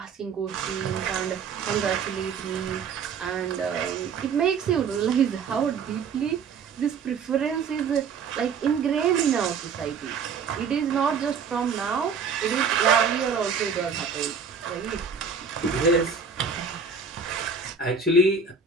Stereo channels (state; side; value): quieter; left; 5.6 dB